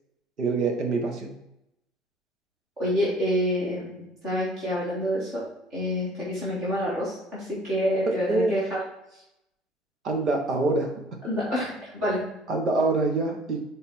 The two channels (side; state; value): both; normal; correlation 0.51